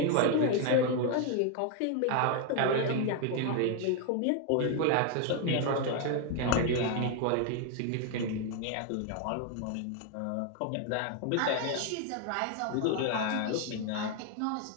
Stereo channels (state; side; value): different; both; correlation 0.01